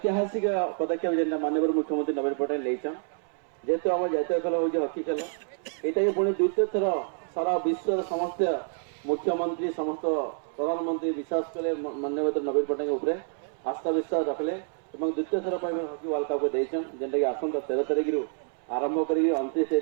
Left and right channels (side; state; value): left; silent; 59 dB below the other